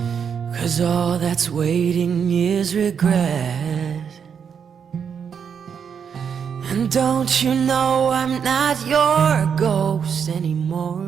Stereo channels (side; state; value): left; quieter; 7.1 dB